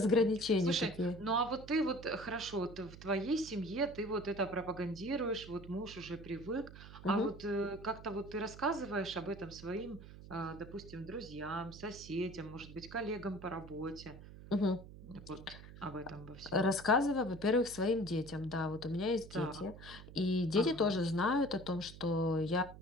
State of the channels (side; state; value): right; noise; hum, 15 dB below the sound